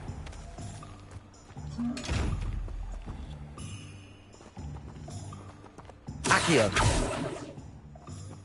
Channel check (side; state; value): both; identical; correlation 1.00